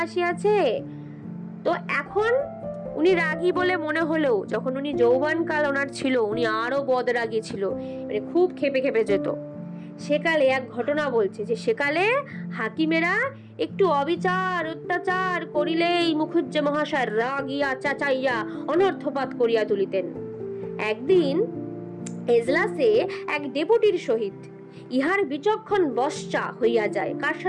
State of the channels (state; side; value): identical; both; correlation 1.00